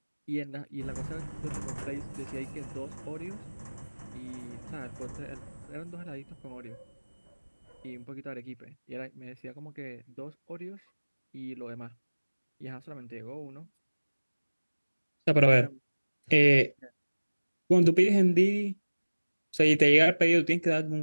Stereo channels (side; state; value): both; inverted; correlation -1.00